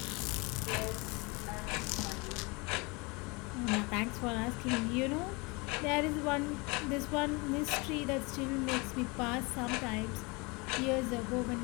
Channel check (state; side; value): quieter; right; 27.7 dB